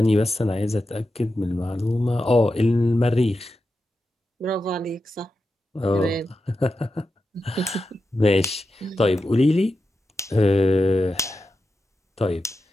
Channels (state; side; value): normal; both; correlation 0.90